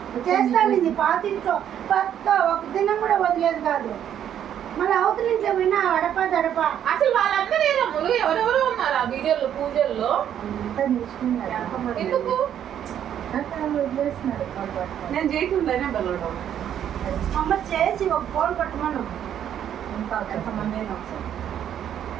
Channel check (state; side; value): quieter; left; 9.9 dB